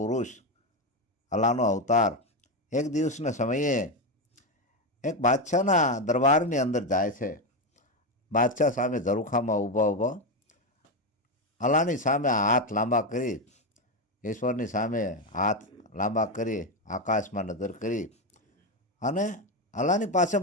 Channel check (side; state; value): both; normal; correlation 0.11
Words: અલ્લાહનો અવતાર, એક દિવસના સમયે એક બાદશાહના દરબારની અંદર જાય છે. બાદશાહ સામે ઝરૂખામાં ઊભા ઊભા અલ્લાહની સામે હાથ લાંબા કરી, ઈશ્વરની સામે હાથ લાંબા કરી, આકાશમાં નજર કરી અને અલ્લાહની પાસે